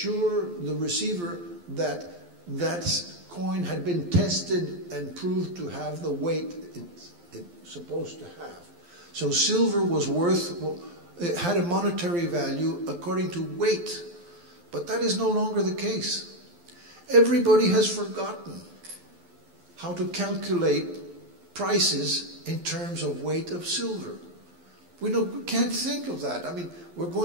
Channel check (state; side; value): late; left; 12 ms